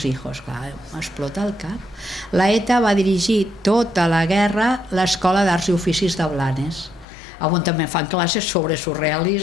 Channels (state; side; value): drops out; right; at 7.1 s